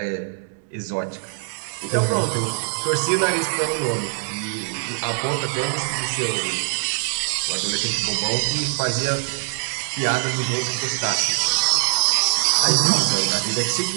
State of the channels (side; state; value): left; silent; digital silence